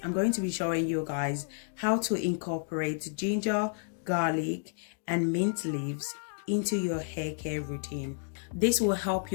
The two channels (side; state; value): right; silent; digital silence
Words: I'm going to be showing you guys how to incorporate ginger, garlic, and mint leaves into your hair care routine. This will help